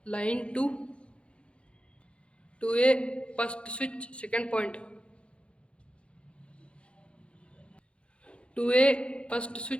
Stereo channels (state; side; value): late; right; 0.059 ms